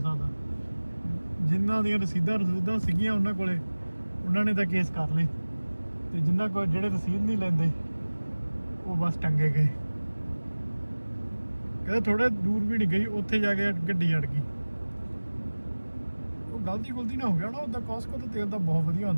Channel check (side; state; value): both; inverted; correlation -1.00